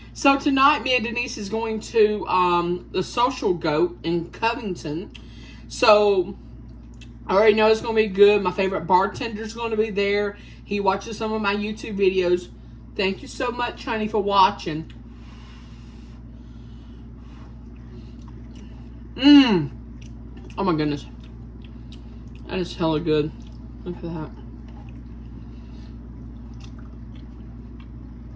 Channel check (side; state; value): both; identical; correlation 1.00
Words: So tonight, me and Denise is going to the Social Goat in Covington. So I already know it's going to be good. My favorite bartender's going to be there. He watches some of my YouTube videos. Thank you so much, honey, for watching. Oh my goodness. That is hella good. Look at that.